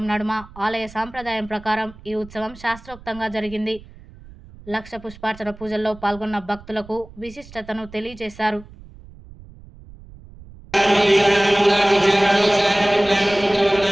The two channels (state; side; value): noise; right; rumble, 20 dB below the sound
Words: నడుమ ఆలయ సాంప్రదాయం ప్రకారం ఈ ఉత్సవం శాస్త్రోక్తంగా జరిగింది. లక్ష పుష్పార్చన పూజల్లో పాల్గొన్న భక్తులకు విశిష్టతను తెలియజేశారు.